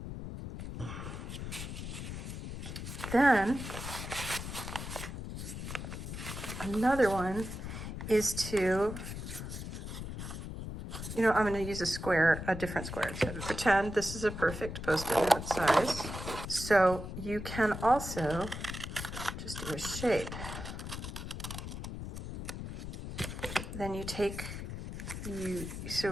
Then another one is to, you know, I'm going to use a square, a different square. So pretend this is a perfect Post-it note size. So you can also just do a shape. Then you take,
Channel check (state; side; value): noise; left; rumble, 7 dB below the sound